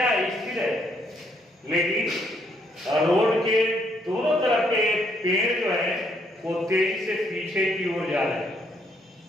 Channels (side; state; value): both; normal; correlation 0.71